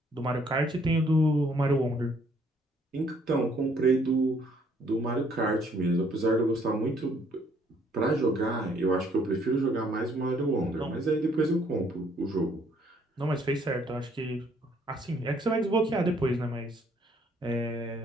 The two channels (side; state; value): both; normal; correlation 0.65